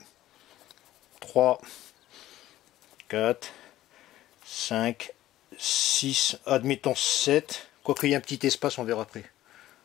3, 4, 5, 6, admettons 7. Quoique il y ait un petit espace, on verra après.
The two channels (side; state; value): right; quieter; 14.6 dB